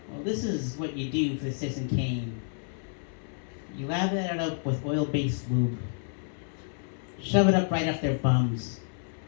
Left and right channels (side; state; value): right; silent; 58 dB below the other